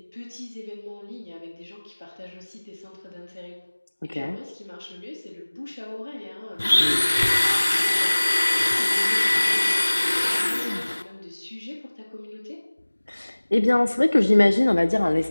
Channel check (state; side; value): inverted; both; correlation -1.00